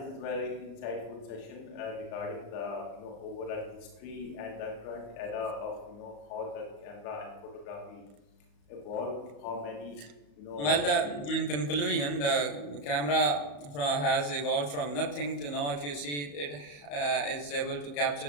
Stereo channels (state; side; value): late; right; 34 ms